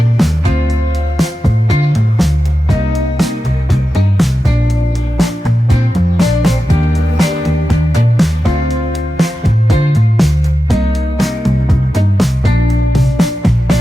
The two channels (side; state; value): both; normal; correlation 0.92